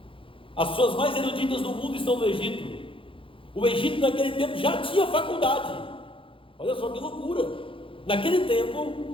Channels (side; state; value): right; late; 0.25 ms